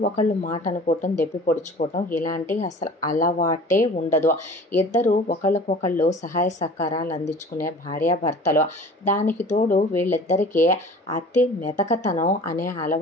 ఒకళ్ళు మాట అనుకోవటం, దెప్పి పొడుచుకోవటం ఇలాంటి అసలు అలవాటే ఉండదు. ఇద్దరు ఒకళ్ళకొకళ్ళు సహాయ సహకారాలు అందించుకునే భార్యాభర్తలు. దానికి తోడు వీళ్ళిద్దరికీ అతి మెతకతనం అనే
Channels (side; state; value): both; normal; correlation 0.43